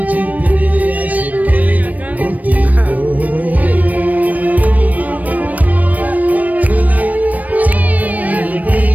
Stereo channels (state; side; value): late; left; 0.074 ms